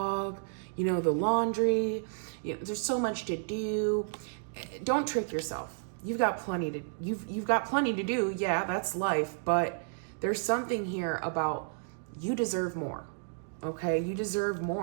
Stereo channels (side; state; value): left; silent; digital silence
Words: the laundry. There's so much to do. Don't trick yourself. You've got plenty to do. Yeah, that's life. But there's something here about you deserve more. Okay, you deserve